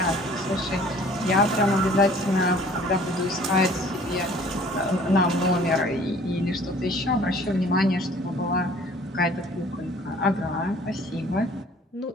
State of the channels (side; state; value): both; normal; correlation 0.52